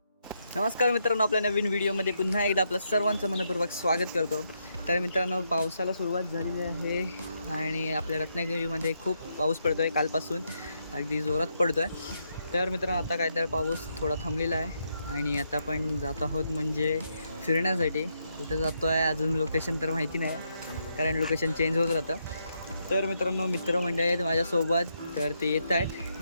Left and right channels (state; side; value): inverted; both; correlation -0.79